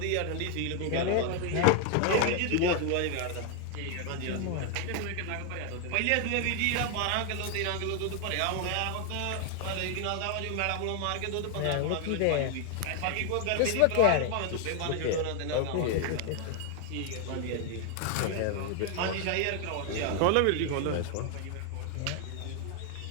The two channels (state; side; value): different; both; correlation 0.00